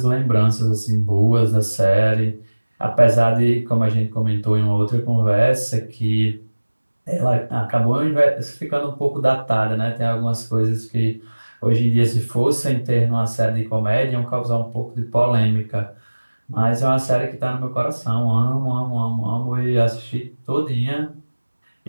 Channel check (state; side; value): inverted; both; correlation -1.00